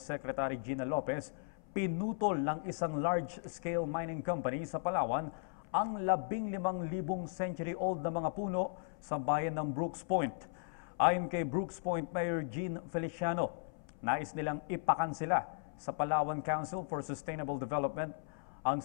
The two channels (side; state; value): right; silent; 53 dB below the other